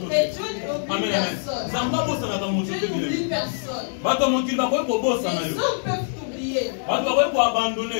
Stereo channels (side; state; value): right; silent; digital silence